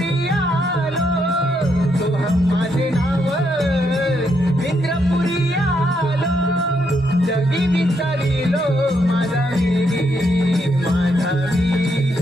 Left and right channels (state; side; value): normal; both; correlation 0.77